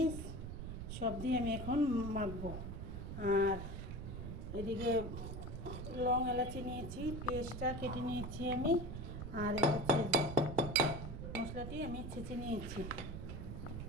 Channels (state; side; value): noise; right; rumble, 7 dB below the sound